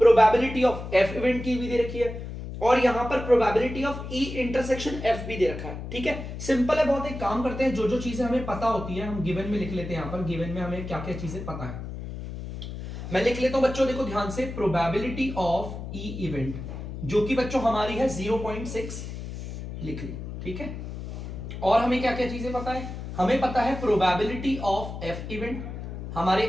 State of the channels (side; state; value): left; noise; hum, 8 dB below the sound